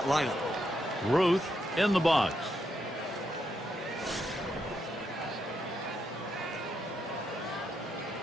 lineup. Ruth in the box.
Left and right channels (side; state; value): both; normal; correlation 0.80